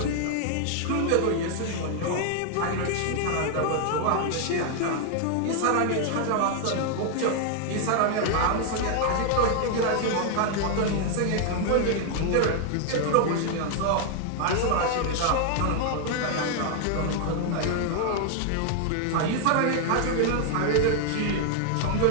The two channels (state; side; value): different; both; correlation 0.00